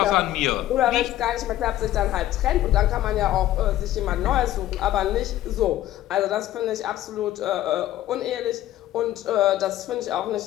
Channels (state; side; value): quieter; right; 13.9 dB